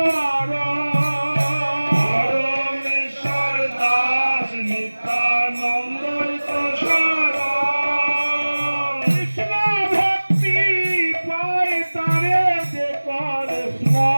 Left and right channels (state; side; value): inverted; both; correlation -1.00